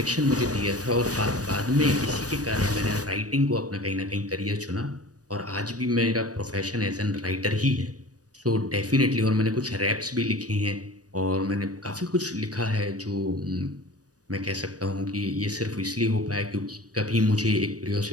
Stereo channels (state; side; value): late; left; 0.68 ms